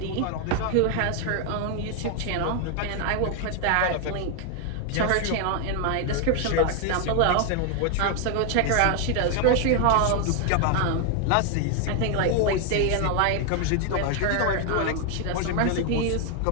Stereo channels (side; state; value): both; different; correlation 0.00